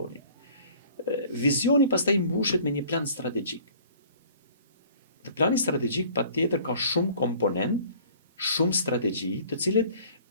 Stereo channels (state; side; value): inverted; both; correlation -0.51